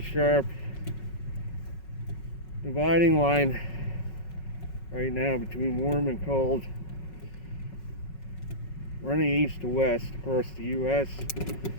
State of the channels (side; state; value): right; late; 5.4 ms